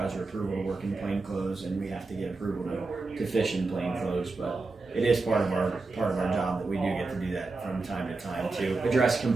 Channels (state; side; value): quieter; left; 3.7 dB